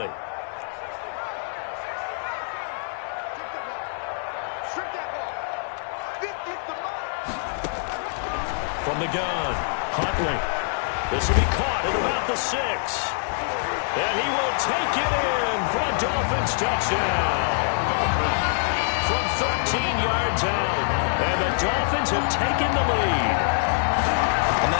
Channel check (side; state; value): right; silent; digital silence